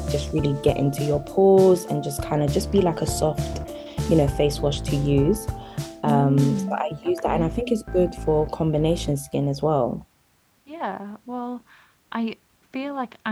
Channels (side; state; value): both; identical; correlation 1.00